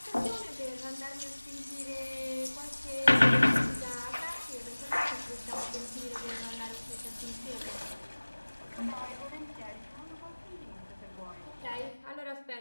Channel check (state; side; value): inverted; both; correlation -1.00